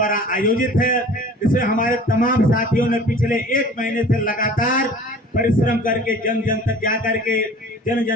आयोजित है। इसमें हमारे तमाम साथियों ने पिछले 1 महीने से लगातार परिश्रम करके जन जन तक जा करके जन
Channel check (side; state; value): both; normal; correlation 0.45